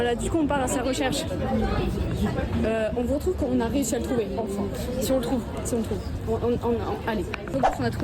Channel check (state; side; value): identical; both; correlation 1.00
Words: du coup, on part à sa recherche. On vous retrouve quand on a réussi à le trouver, enfin. Si on le trouve, si on le trouve. Allez, on a